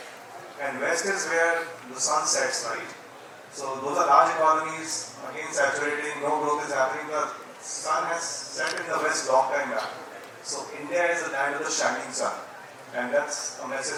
And west is where the sun sets, right? So those are large economies, again saturating, no growth is happening. The sun has set in the west long time back. So India is the land of the shining sun. And that's a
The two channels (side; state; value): both; identical; correlation 1.00